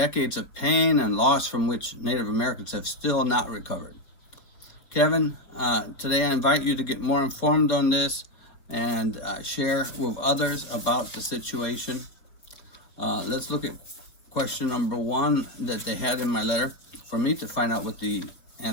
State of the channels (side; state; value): right; late; 4.6 ms